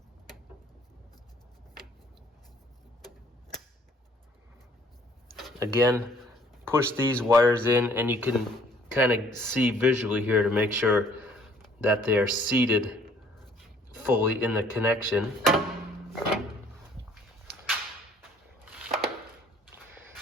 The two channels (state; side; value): normal; both; correlation 0.59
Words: Again, push these wires in, and you can kind of see visually here to make sure that they are seated fully in the connection.